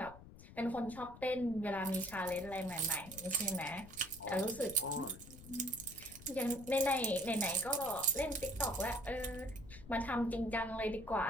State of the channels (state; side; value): noise; left; rumble, 17 dB below the sound